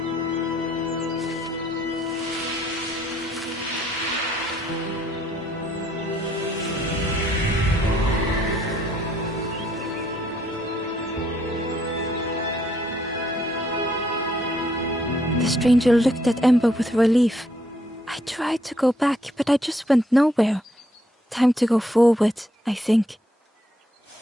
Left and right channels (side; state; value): both; normal; correlation 0.69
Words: The stranger looked at Ember with relief. I tried to go back, but I just went nowhere. Time to go forward, I think.